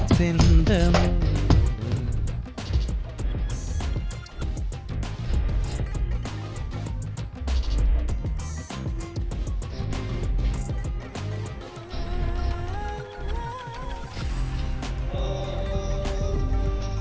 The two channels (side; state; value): both; identical; correlation 1.00